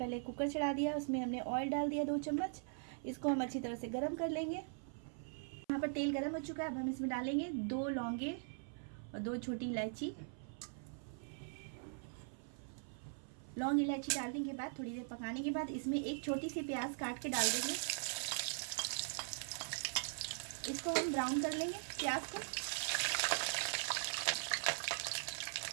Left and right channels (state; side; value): silent; left; 50 dB below the other